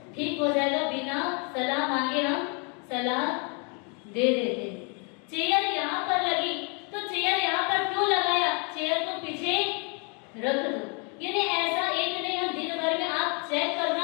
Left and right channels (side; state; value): right; quieter; 35.5 dB